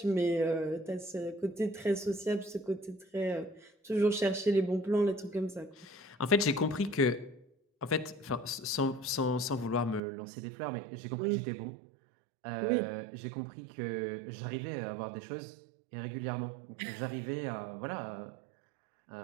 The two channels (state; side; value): drops out; left; at 10.0 s